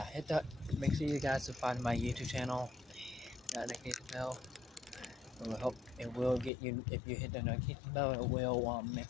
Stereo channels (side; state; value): right; drops out; at 6.5 s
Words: hit that. Make sure you guys subscribe to my YouTube channel. That notification bell. It will help. It will get you. If you hit the notification bell, it will